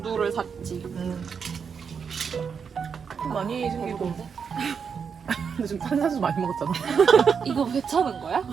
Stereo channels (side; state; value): left; quieter; 6.4 dB